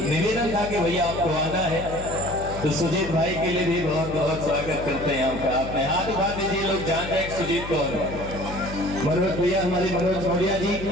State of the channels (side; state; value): left; noise; hum, 10 dB below the sound